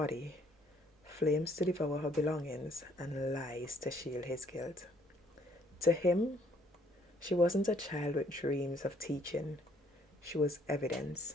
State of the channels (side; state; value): both; normal; correlation 0.64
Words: flames to devour her belongings, and lies to shield his guilt. To him, she wasn't a child with dreams of teaching. She was